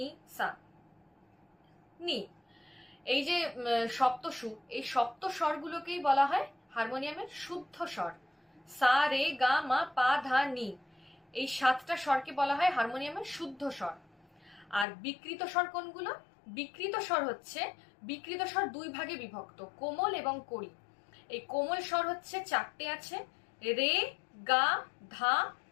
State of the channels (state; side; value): drops out; right; at 14.9 s